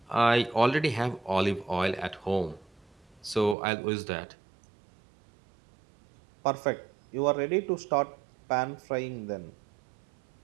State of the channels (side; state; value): left; drops out; at 3.6 s